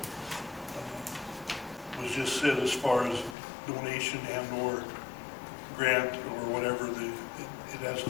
was just said as far as donation and or grant or whatever, it has to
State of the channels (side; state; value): right; drops out; at 3.4 s